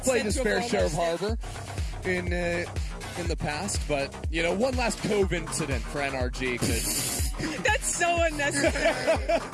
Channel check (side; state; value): both; identical; correlation 1.00